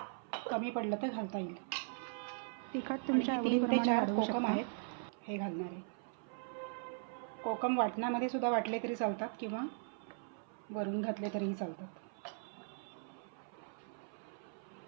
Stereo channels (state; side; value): silent; left; 52 dB below the other